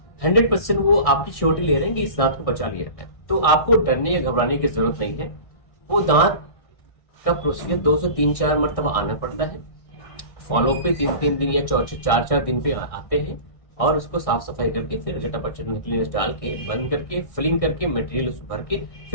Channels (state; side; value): late; right; 1.6 ms